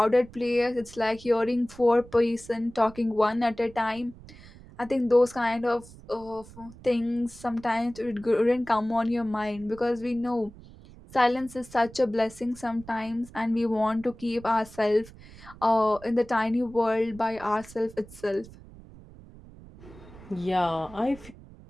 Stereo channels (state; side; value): noise; right; rumble, 20 dB below the sound